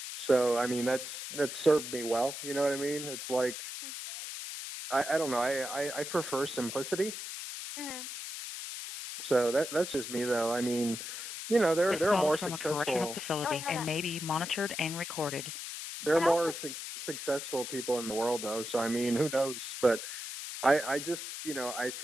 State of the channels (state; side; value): noise; left; hiss, 7 dB below the sound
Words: So, I mean, that's served me well, you know what I mean? It's like, I don't know, I prefer simplicity. So that's just me, though. I mean, you know, there are more from successful. A correctional facility and may be monitored and recorded. There are more successful people in the world, though. So I mean, who knows? But I just, you know, I